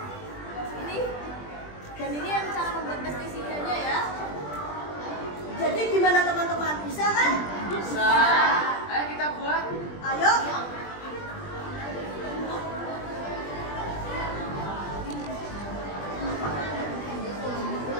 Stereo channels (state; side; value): late; right; 20 ms